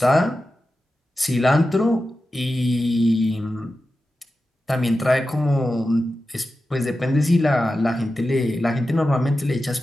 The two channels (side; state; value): both; normal; correlation 0.92